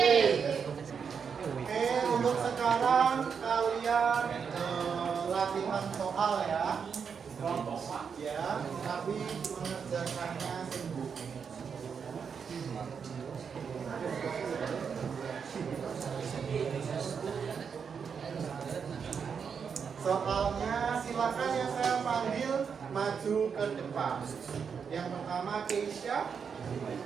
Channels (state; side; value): quieter; left; 6.4 dB